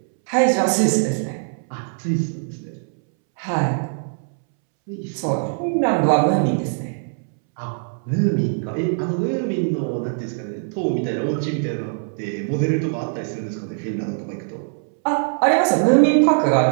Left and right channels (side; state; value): left; silent; 64 dB below the other